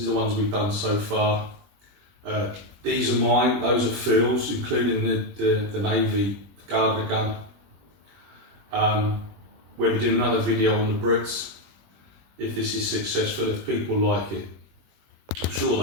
the ones we've done so far. These are mine, those are Phil's, including the Navy Gardner gun. We'll be doing another video on the Brits, if this is successful, if people like it. I'm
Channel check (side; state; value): left; late; 20 ms